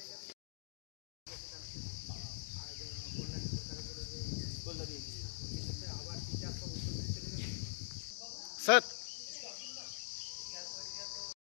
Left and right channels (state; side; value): silent; right; digital silence